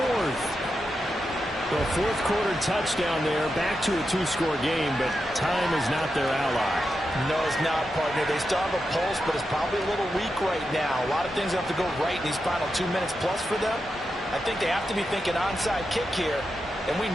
The 4th quarter touchdown there, back to a 2-score game, but time is not their ally. No, it's not, partner. They still have a pulse, but it's probably a little weak right now. A lot of things have to go right in these final 2 minutes plus for them. I think they have to be thinking onside kick here, and we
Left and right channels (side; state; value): both; normal; correlation 0.88